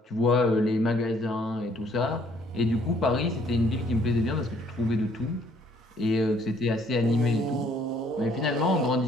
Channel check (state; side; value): normal; both; correlation 0.63